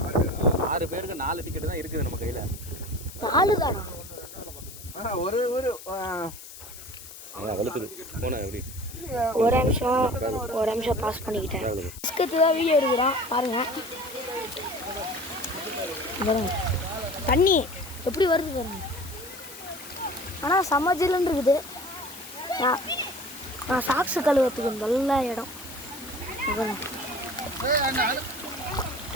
6 பேருக்கு 4 டிக்கெட்டு தான் இருக்குது நம்ம கையில். 4 தானா? ஒரு வலுக்குது போனேன் எப்படி? ஒரு நிமிஷம் பாஸ் பண்ணிக்கிட்டேன். பிஸ்கட்டு தான் வீடியோ எடுக்கிறான் பாருங்க. தண்ணி எப்படி வருது பாருங்க. ஆனால் சமஜில்னு இருக்குது. நான் சாக்ஸு கழுவுறதுக்கு நல்ல இடம்.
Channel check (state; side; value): noise; left; hiss, 15 dB below the sound